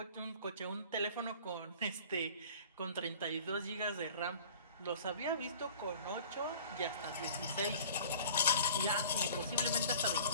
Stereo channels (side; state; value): both; inverted; correlation -0.46